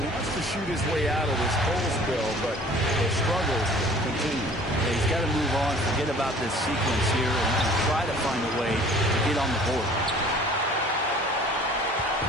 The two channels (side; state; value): both; normal; correlation 0.50